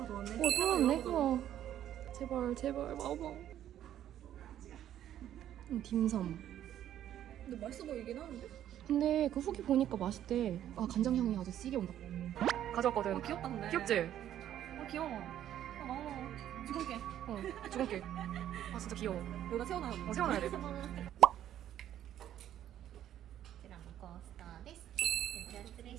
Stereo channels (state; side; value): quieter; left; 11.3 dB